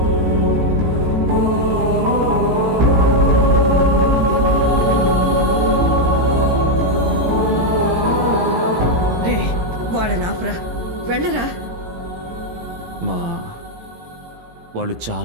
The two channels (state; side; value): late; left; 17 ms